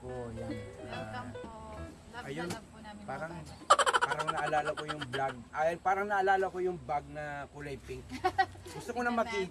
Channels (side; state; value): both; identical; correlation 1.00